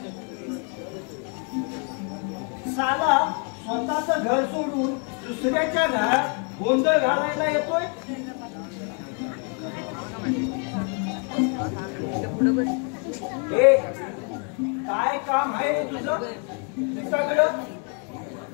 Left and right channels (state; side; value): quieter; right; 38.2 dB